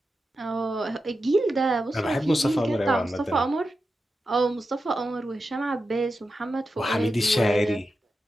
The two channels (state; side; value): normal; both; correlation 0.90